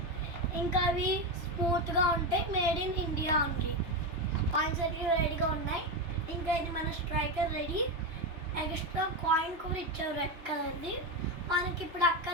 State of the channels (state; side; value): late; left; 2.8 ms